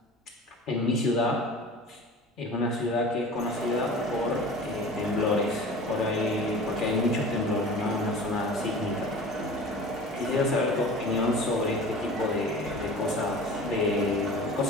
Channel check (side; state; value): both; normal; correlation 0.38